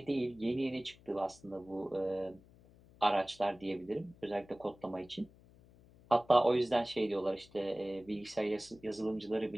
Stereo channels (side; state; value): left; noise; hum, 25 dB below the sound